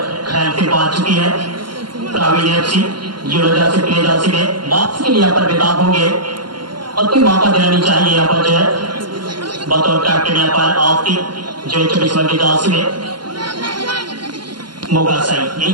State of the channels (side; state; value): left; late; 0.71 ms